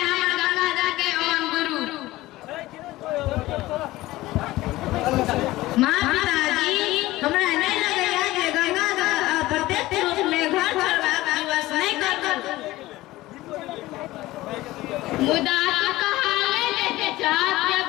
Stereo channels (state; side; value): quieter; right; 17.8 dB